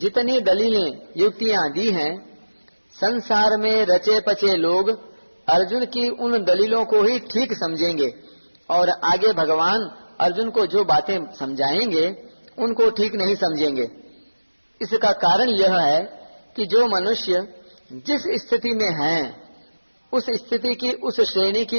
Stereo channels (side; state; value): both; inverted; correlation -1.00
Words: दलीलें युक्तियां दी हैं, संसार में रचे पचे लोग अर्जुन की उन दलीलों को ही ठीक समझेंगे और आगे भगवान अर्जुन को जो बातें समझाएंगे उनको ठीक नहीं समझेंगे। इसका कारण यह है कि जो मनुष्य जिस स्थिति में हैं उस स्थिति की उस श्रेणी